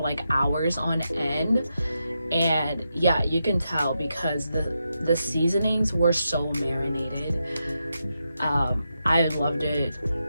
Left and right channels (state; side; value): inverted; both; correlation -0.86